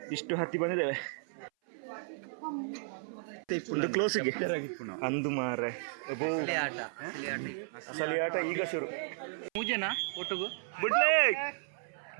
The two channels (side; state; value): left; silent; 55 dB below the other